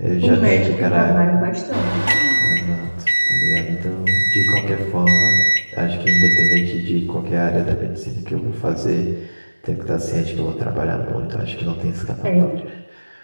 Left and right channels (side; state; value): both; inverted; correlation -1.00